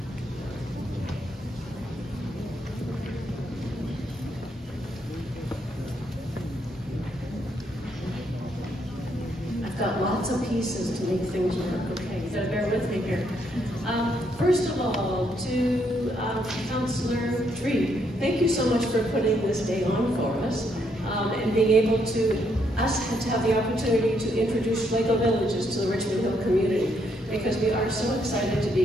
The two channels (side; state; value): both; normal; correlation 0.74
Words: Got lots of pieces to make things work. Okay, you gotta bear with me here. First of all, to Councillor Dree, thank you so much for putting this day on for us and being able to have the opportunity to introduce Schlegel Villages to the Richmond Hill community, because we are so excited to